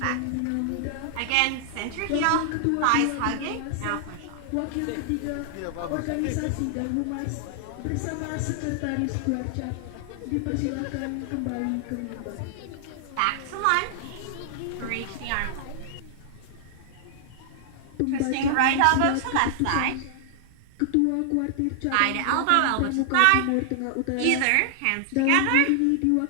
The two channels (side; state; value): both; different; correlation 0.00